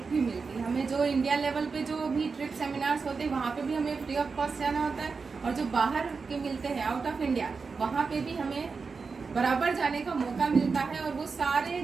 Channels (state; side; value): quieter; left; 4.8 dB